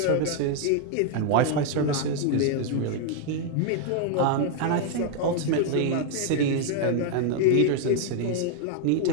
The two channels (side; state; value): both; different; correlation 0.00